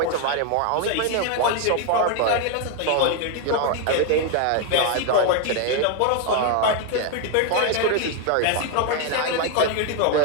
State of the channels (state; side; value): different; both; correlation 0.01